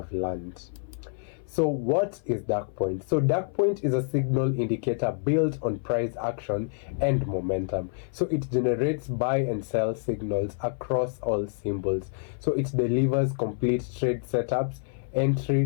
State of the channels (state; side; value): silent; right; 57 dB below the other